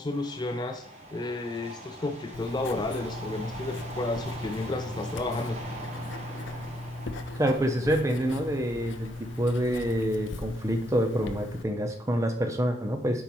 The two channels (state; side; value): normal; both; correlation 0.73